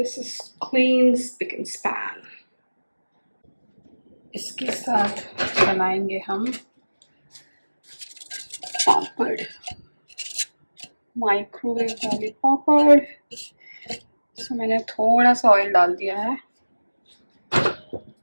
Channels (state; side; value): inverted; both; correlation -1.00